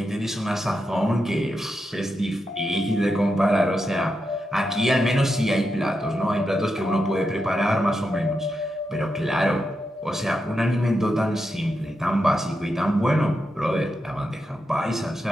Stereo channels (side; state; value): both; normal; correlation 0.86